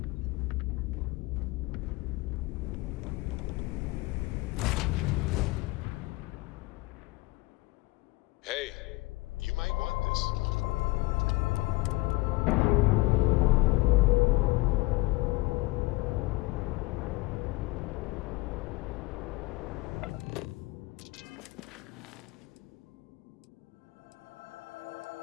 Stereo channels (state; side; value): quieter; right; 21.4 dB